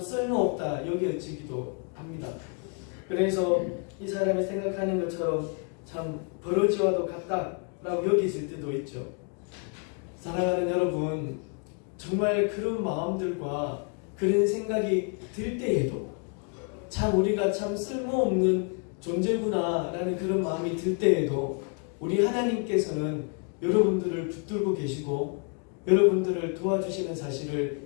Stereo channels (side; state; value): right; quieter; 38.8 dB